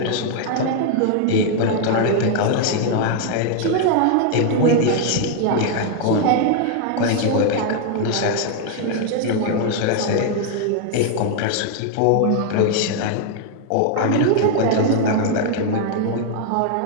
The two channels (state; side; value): different; both; correlation 0.00